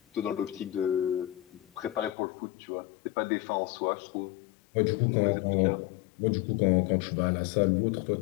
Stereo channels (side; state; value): right; drops out; at 2.1 s